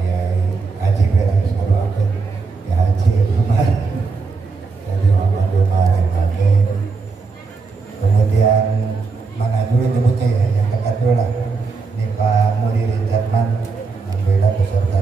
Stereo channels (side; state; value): left; quieter; 4.4 dB